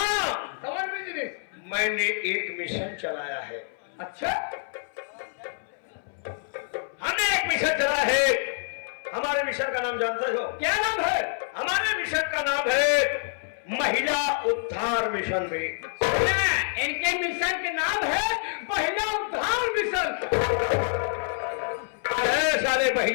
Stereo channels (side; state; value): right; silent; 60 dB below the other